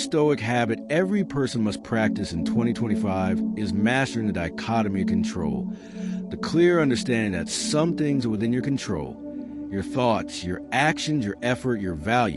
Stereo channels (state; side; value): identical; both; correlation 1.00